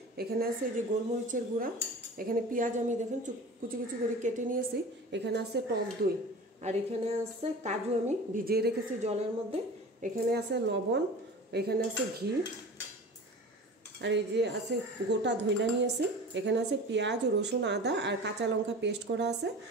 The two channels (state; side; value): normal; both; correlation 0.37